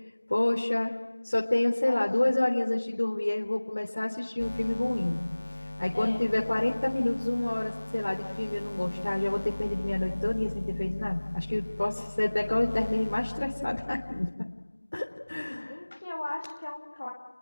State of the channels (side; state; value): both; inverted; correlation -1.00